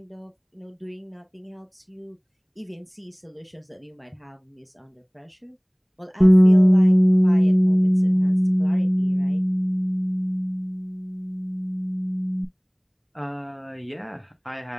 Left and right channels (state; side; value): identical; both; correlation 1.00